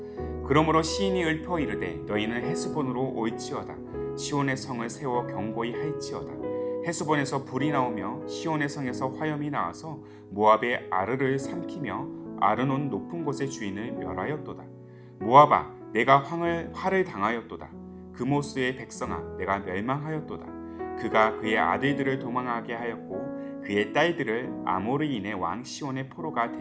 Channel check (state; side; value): identical; both; correlation 1.00